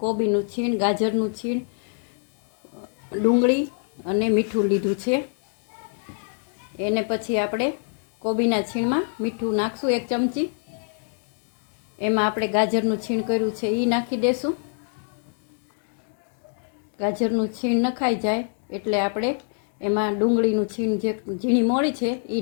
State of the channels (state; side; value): silent; right; 56 dB below the other